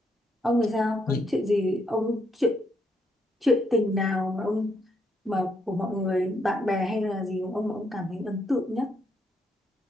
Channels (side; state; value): both; normal; correlation 0.75